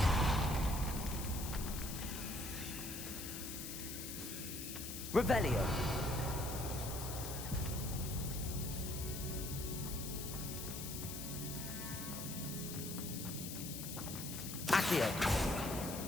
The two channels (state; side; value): noise; left; hiss, 7 dB below the sound